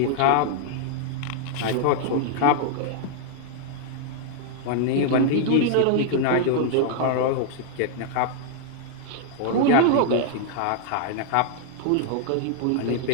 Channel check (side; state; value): both; different; correlation -0.01